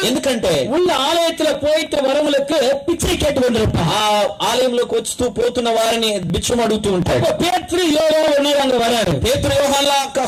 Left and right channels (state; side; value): identical; both; correlation 1.00